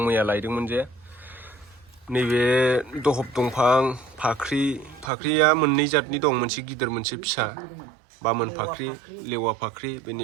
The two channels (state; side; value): drops out; left; at 5.1 s